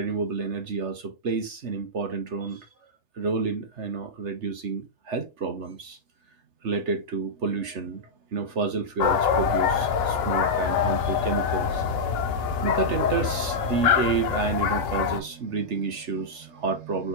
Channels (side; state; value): left; late; 3.3 ms